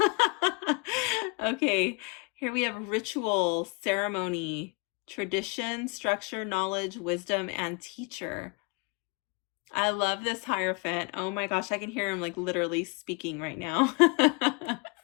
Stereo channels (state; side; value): quieter; right; 31.2 dB